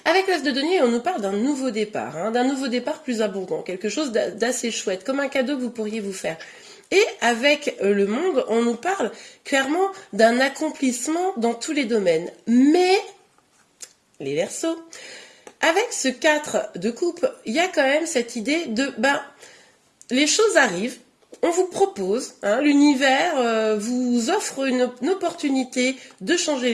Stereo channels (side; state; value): both; identical; correlation 1.00